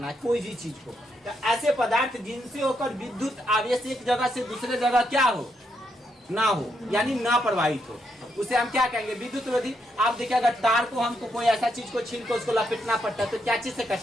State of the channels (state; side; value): normal; both; correlation 0.78